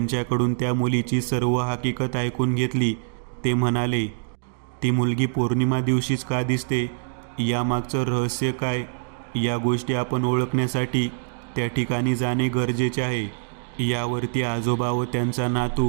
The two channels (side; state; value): left; silent; digital silence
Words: त्या मुलीची सर्व हकीकत ऐकून घेतली. ते म्हणाले, ती मुलगी पौर्णिमा दिवशीच का दिसते, यामागचं रहस्य काय, या गोष्टी आपण ओळखण्यासाठी त्या ठिकाणी जाणे गरजेचे आहे. यावरती आजोबा व त्यांचा